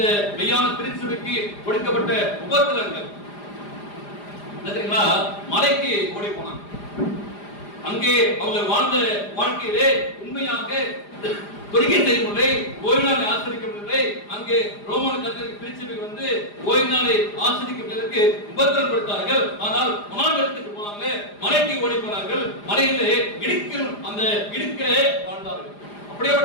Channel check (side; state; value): right; late; 4.9 ms